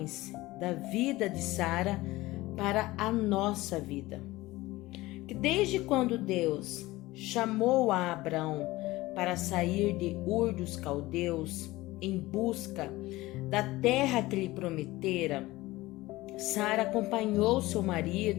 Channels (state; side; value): quieter; right; 19.0 dB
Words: da vida de Sara para a nossa vida. Que desde quando Deus chamou a Abraão para sair de Ur dos Caldeus em busca da terra que lhe prometera, Sara acompanhou seu